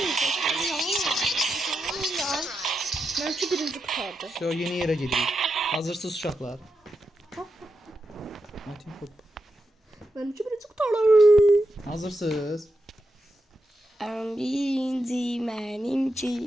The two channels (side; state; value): both; normal; correlation 0.87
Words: Belki birinci kurtardı. So, yeni yerə gedirik. Hazırsız uşaqlar. Metin top. Benimki birinci kurtardı. Hazırsız. Birinci